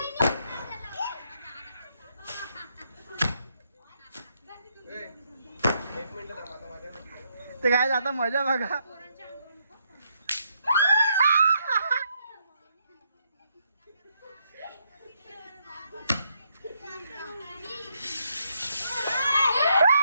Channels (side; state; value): both; inverted; correlation -0.76